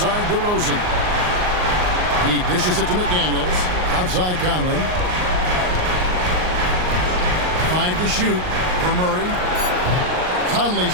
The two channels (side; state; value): left; late; 39 ms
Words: DeRozan. He dishes it to McDaniels. Outside Conley. 5 to shoot for Murray.